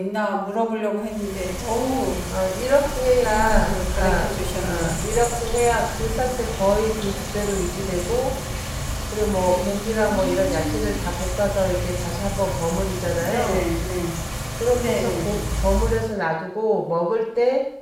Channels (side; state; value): both; identical; correlation 1.00